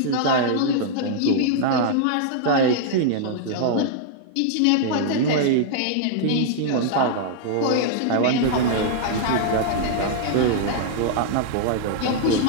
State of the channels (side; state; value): both; different; correlation -0.01